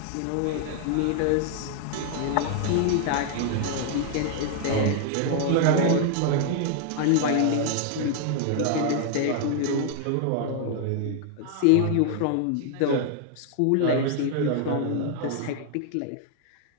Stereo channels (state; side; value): different; both; correlation 0.00